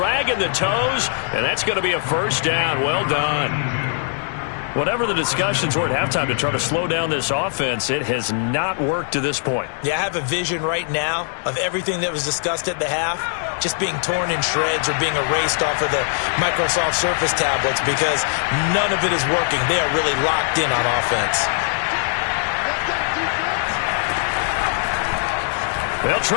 the toes, and that's going to be a first down. Well done. Whatever the discussions were at halftime to try to slow down this offense, it has not worked to this point. Yeah, I have a vision right now of everything that was discussed at the half just being torn in shreds or being erased off of the Microsoft Surface tablets because none of it is working. They are really locked in on offense. They'll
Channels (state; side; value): silent; right; digital silence